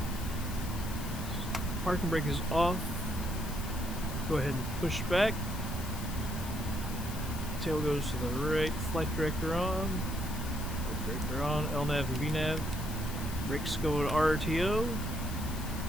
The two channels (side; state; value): left; noise; hiss, 12 dB below the sound